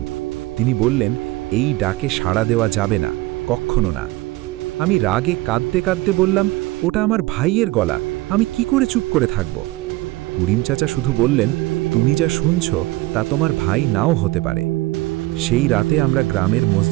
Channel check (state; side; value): quieter; left; 19.9 dB